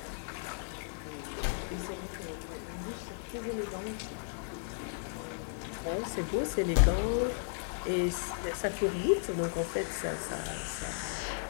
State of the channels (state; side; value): silent; right; 55 dB below the other